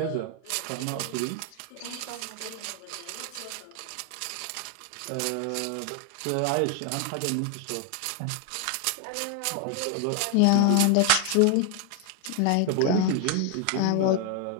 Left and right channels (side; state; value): both; different; correlation 0.01